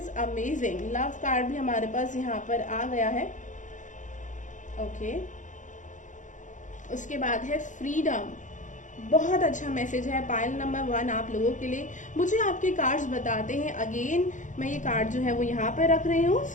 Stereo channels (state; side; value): late; right; 0.36 ms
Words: amazing. Love card भी हमारे पास यहाँ पर आ गया है। ओके, उसके बाद है फ्रीडम। बहुत अच्छा मैसेज है पायल नंबर 1 आप लोगों के लिए। मुझे आपके कार्ड्स बताते हैं। अगेन मैं ये कार्ड जो है वो यहाँ पे रख रही हूँ